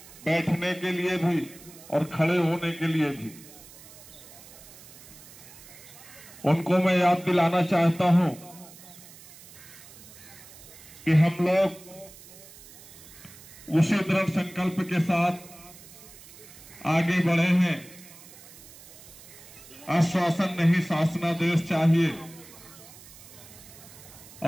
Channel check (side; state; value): right; noise; hiss, 19 dB below the sound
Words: बैठने के लिए भी और खड़े होने के लिए भी। उनको मैं याद दिलाना चाहता हूं कि हम लोग उसी दृढ़ संकल्प के साथ आगे बढ़े हैं। आश्वासन नहीं, शासनादेश चाहिए।